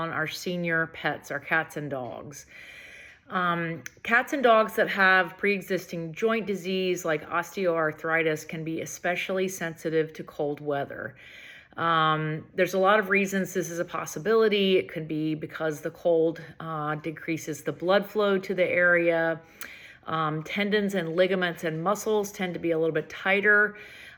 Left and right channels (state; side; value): identical; both; correlation 1.00